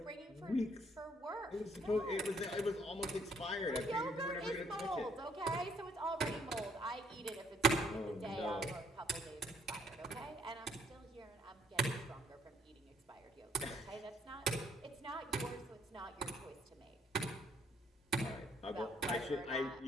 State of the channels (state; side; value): normal; both; correlation 0.66